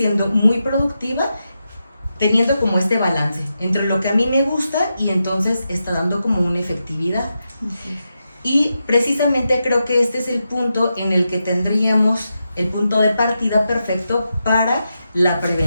muy productiva, teniendo como este balance entre lo que a mí me gusta y entonces está dando como una efectividad. Así es. Y precisamente creo que este es el punto en el que tendríamos el punto de partida perfecto para la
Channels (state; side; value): inverted; both; correlation -0.88